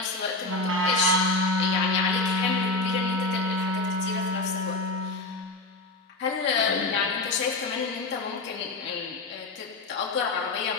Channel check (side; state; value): right; quieter; 3.2 dB